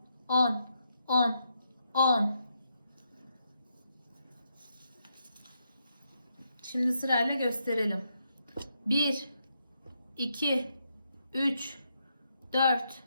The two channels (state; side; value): inverted; both; correlation -0.80